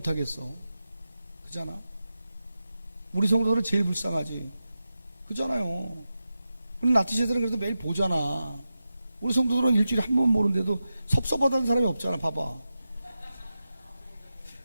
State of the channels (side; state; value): both; inverted; correlation -0.92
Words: 하겠어. 그잖아. 우리 성도들은 제일 불쌍하지. 그잖아요. 우리 나티세들은 그래도 매일 보잖아. 우리 성도들은 일주일에 한 번 보는데도 섭섭하다는 사람이 없잖아. 봐봐.